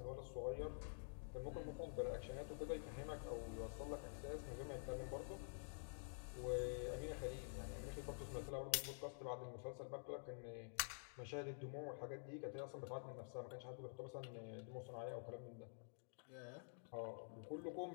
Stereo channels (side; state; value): right; silent; digital silence